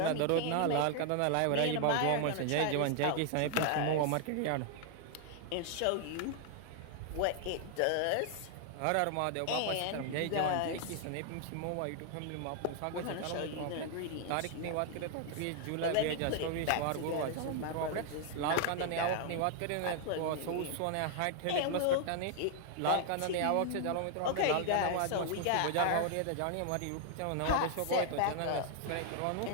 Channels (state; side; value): different; both; correlation 0.00